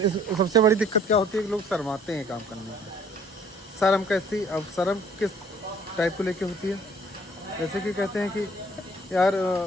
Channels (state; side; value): normal; both; correlation 0.56